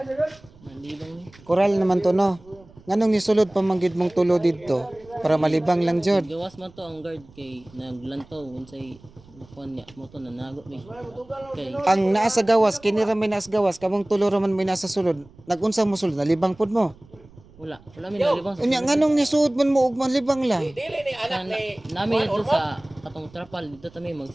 Malibang ni. Koral naman to no. Nganong nisulod pa manggid mong tulo dito para malibang lang jud. Gawas man to ang guard kay naglantaw unsay kuan niya mo to nanago ni. Kay Ang naa sa gawas kini ra may naa sa gawas kamong tulo ra man may nasa sulod. Nagunsa mo sulod nalibang pud mo. wala mi nalibang sa. Unya nganong nisuod man mo ug malibang lang. Dili ni anak ni. Nami dito sa katong trapal dito ta may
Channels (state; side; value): noise; right; rumble, 25 dB below the sound